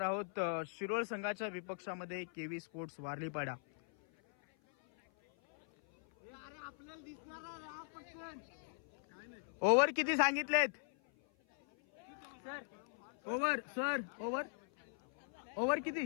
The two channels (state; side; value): silent; right; 51 dB below the other